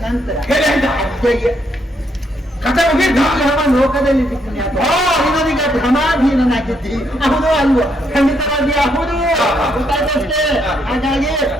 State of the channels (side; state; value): both; normal; correlation 0.75